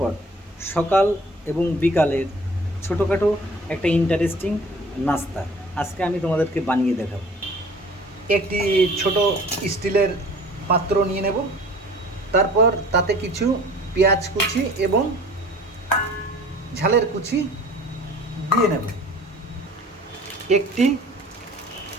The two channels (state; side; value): normal; both; correlation 0.48